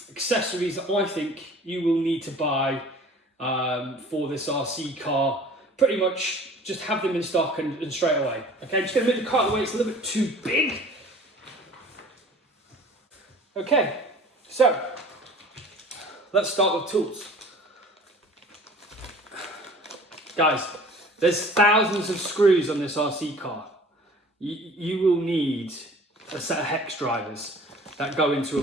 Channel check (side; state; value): both; normal; correlation 0.47